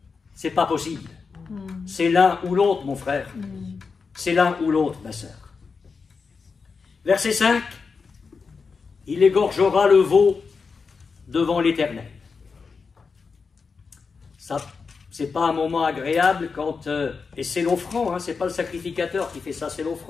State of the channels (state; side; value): quieter; right; 5.0 dB